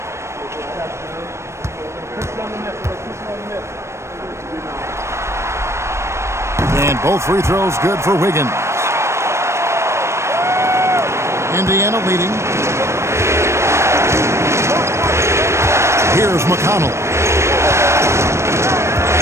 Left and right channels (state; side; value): late; left; 0.13 ms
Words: And both free throws good for Wiggins. Indiana leading. Here's McConnell.